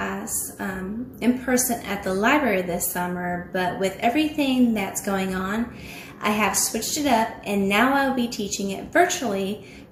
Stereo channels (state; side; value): identical; both; correlation 1.00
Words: in person at the library this summer, but with everything that's going on, I have switched it up and now I'll be teaching it virtually